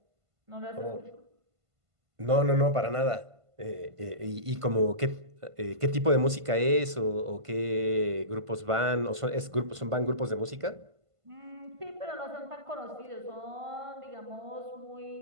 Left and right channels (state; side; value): late; left; 1.5 ms